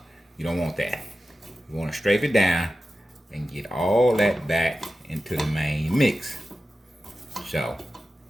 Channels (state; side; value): normal; both; correlation 0.93